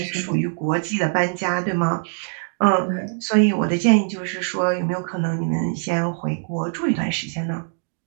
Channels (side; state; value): left; silent; digital silence